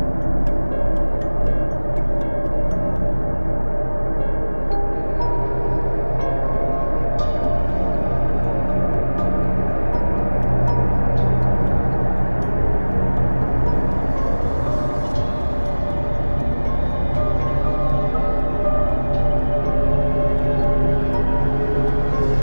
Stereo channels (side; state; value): both; inverted; correlation -1.00